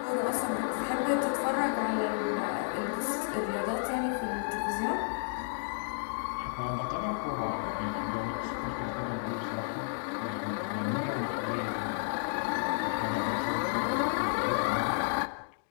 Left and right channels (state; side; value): silent; right; digital silence